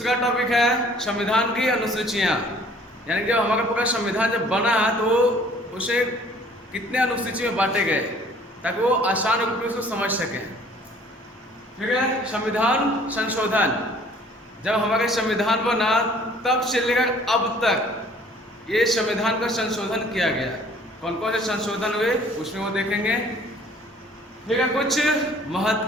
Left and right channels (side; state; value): both; normal; correlation 0.55